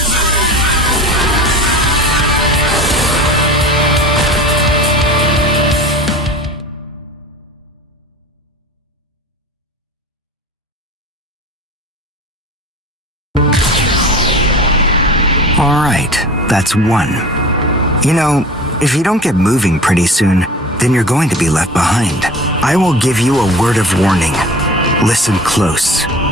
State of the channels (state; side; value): normal; both; correlation 0.38